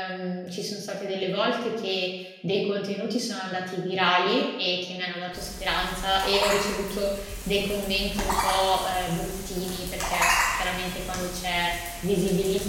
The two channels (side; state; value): both; identical; correlation 1.00